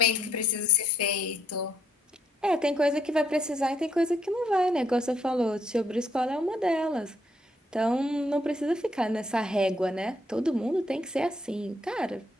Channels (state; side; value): normal; both; correlation 0.73